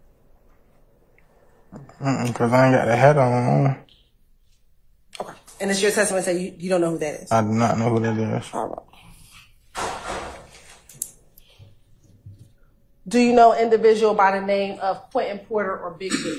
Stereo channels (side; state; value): both; identical; correlation 1.00